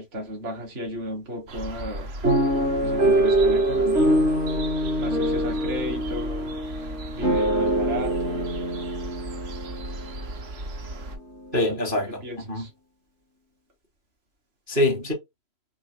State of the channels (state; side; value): late; left; 3.0 ms